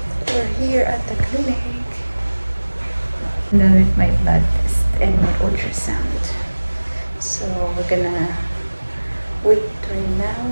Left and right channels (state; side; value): inverted; both; correlation -1.00